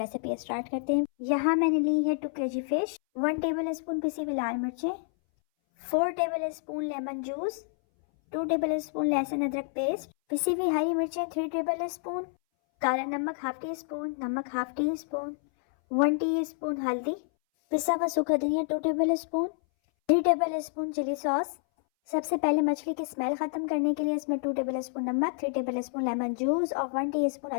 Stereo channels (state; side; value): silent; right; 59 dB below the other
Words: स्टार्ट करते हैं। यहाँ मैंने ली है 2 kg फ़िश, 1 टेबल स्पून पिसी हुई लाल मिर्चें, 4 table spoon lemon juice, 2 table spoon लहसुन अदरक पेस्ट, पिसी हुई हरी मिर्चें 3 टेबल स्पून, काला नमक हाफ टी स्पून, नमक हाफ टी स्पून, 1 टीस्पून हल्दी, पिसा हुआ सूखा धनिया 2 tablespoon, 3 tablespoon chilli sauce. सबसे पहले मछली की स्मेल खत्म करने के लिए इसमें 2 टेबल स्पून नमक, 3 टेबल स्पून लेमन जूस और 1 टीस्पून